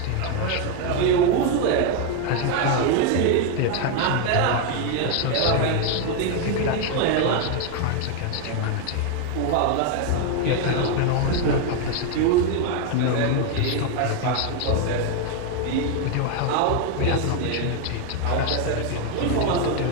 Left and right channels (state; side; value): different; both; correlation 0.01